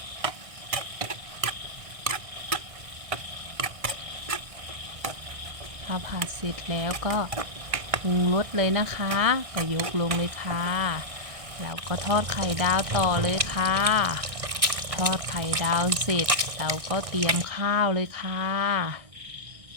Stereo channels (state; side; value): late; left; 1.6 ms